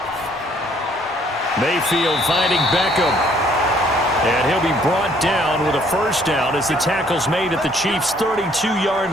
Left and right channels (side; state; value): both; normal; correlation 0.63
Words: Mayfield finding Beckham. And he'll be brought down with a first down as the tackle's made at the Chiefs' 32-yard